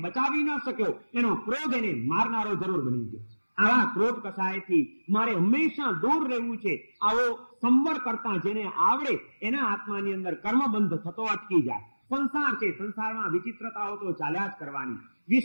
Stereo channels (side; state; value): both; inverted; correlation -1.00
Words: બચાવી ન શક્યો, એનો ક્રોધ એને મારનારો જરૂર બની ગયો. આવા ક્રોધ કસાયથી મારે હંમેશા દૂર રહેવું છે. આવો સંવર કરતા જેને આવડે એના આત્માની અંદર કર્મબંધ થતો અટકી જાય. સંસાર છે, સંસારમાં વિચિત્રતાઓ તો ચાલ્યા જ કરવાની,